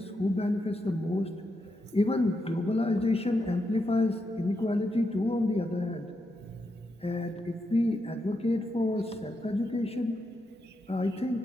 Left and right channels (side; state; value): both; normal; correlation 0.84